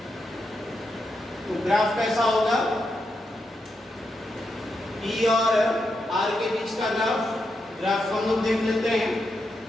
तो ग्राफ कैसा होगा, E और R के बीच का ग्राफ हम लोग देख लेते हैं।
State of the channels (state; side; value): normal; both; correlation 0.84